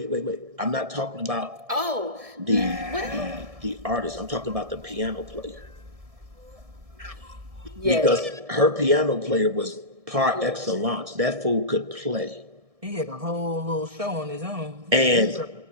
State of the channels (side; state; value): left; late; 1.7 ms